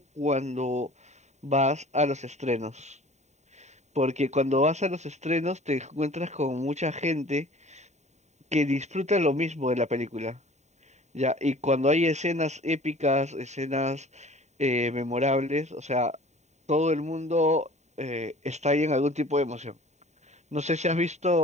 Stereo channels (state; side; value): late; left; 0.33 ms